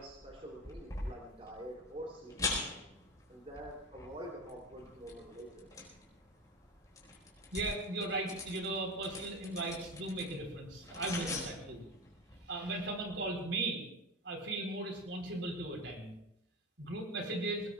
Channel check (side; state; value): both; normal; correlation 0.23